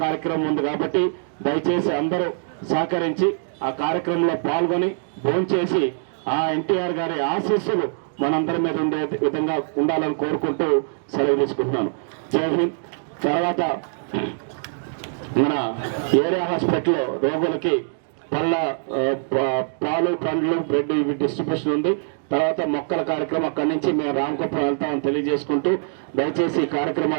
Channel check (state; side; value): silent; left; digital silence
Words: కార్యక్రమం ఉంది కాబట్టి దయచేసి అందరూ సహకరించి ఆ కార్యక్రమంలో పాల్గొని భోంచేసి ఆ ఎన్టీఆర్ గారి ఆశీస్సులు మనందరి మీద ఉండే విధంగా ఉండాలని కోరుకుంటూ సెలవు తీసుకుంటున్నాను. జై హింద్. తర్వాత మన ఏరియా హాస్పిటల్లో రోగులకి పాలు, పండ్లు, బ్రెడ్ ఇవి డిస్ట్రిబ్యూషన్ ఉంది. తర్వాత మొక్కల కార్యక్రమం అక్కడి నుంచి మేము రామకుప్పం వెళ్తామని తెలియజేసుకుంటూ దయచేసి ఈ